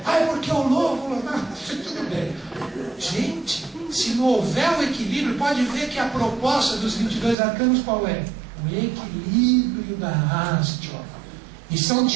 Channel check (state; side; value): drops out; left; at 7.4 s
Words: é porque eu louvo, tudo bem. Gente, se não houver o equilíbrio, pode ver que a proposta dos 22 arcanos qual é? O equilíbrio da haste. E são